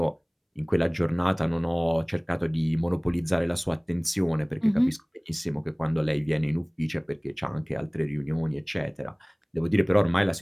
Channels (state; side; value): identical; both; correlation 1.00